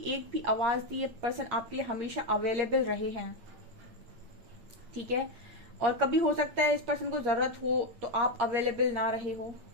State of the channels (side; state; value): left; late; 8.6 ms